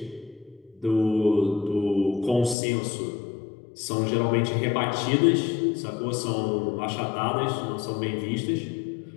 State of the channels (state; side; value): drops out; right; at 2.6 s